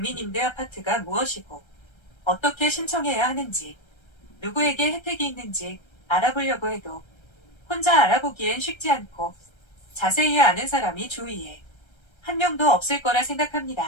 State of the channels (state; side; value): late; right; 1.3 ms